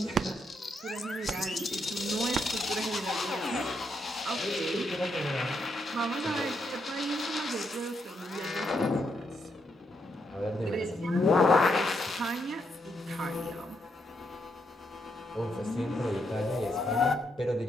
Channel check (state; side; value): normal; both; correlation 0.79